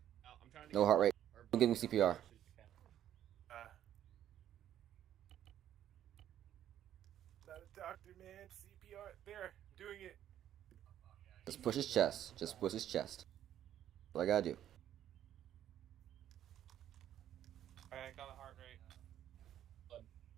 Oh, I'm trying to No heart rate. Don't give him CPR. Not a doctor, man. CPR. There. Doing it. Just push his chest. Just push his chest. That's all I gotta do. Alright, I got a heart rate.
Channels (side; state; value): left; quieter; 11.1 dB